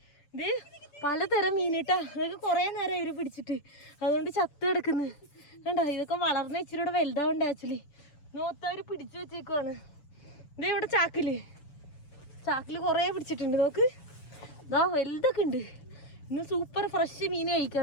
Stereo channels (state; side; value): late; right; 6.9 ms